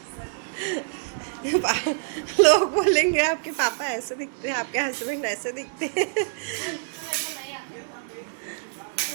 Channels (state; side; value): silent; left; digital silence